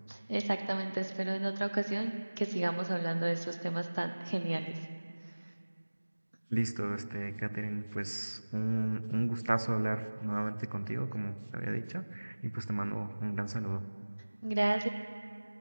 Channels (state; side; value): inverted; both; correlation -1.00